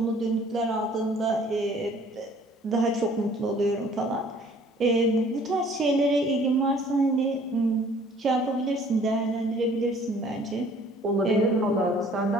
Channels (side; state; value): both; normal; correlation 0.55